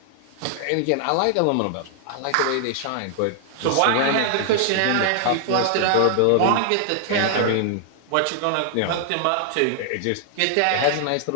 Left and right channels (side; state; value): both; different; correlation 0.00